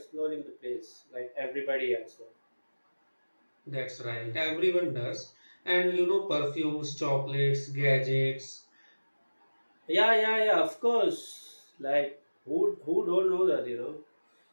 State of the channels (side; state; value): both; inverted; correlation -1.00